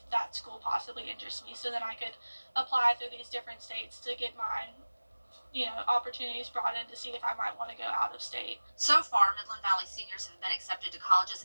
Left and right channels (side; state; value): both; inverted; correlation -1.00